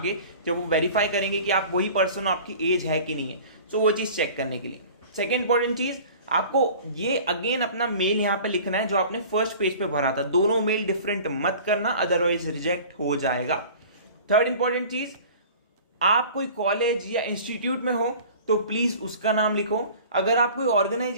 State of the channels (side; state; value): both; inverted; correlation -0.43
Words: जब वो वेरीफाई करेंगे कि आप वही पर्सन हो, आपकी एज है कि नहीं है, सो वो चीज चेक करने के लिए। सेकेंड इंपॉर्टेंट चीज, आपको ये अगेन अपना मेल यहाँ पे लिखना है जो आपने फर्स्ट पेज पे भरा था। दोनों मेल डिफरेंट मत करना, अदरवाइज रिजेक्ट हो जाएगा। थर्ड इंपॉर्टेंट चीज, आप कोई कॉलेज या इंस्टीट्यूट में हो तो प्लीज उसका नाम लिखो। अगर आप कोई